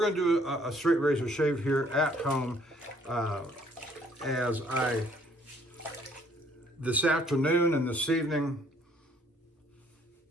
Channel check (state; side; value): normal; both; correlation 0.63